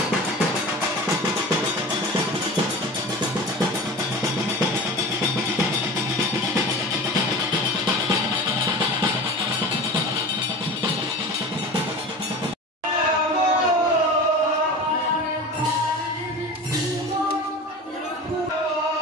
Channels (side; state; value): both; normal; correlation 0.34